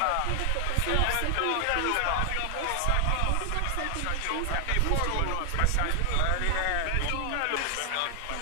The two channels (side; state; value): both; different; correlation 0.00